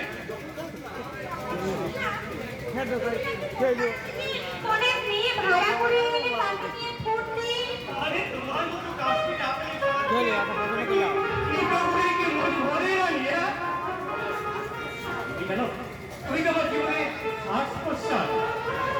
অনেক মেয়ে ভাড়া করে এনে তাকে নিয়ে ঘুরতে। আরে তোমার মতো কাজটি না পেলে এই কাউকে কি মনে হয় কেন তুমি তো আমার জীবনে শ্বাস প্রশ্বাস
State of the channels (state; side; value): identical; both; correlation 1.00